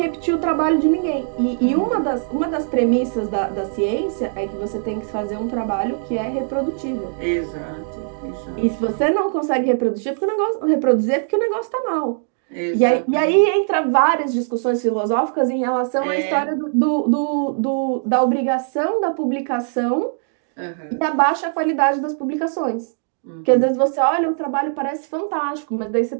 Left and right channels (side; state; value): left; silent; digital silence